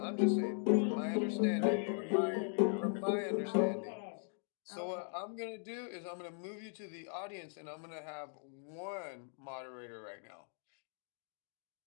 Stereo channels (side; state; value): right; silent; 52 dB below the other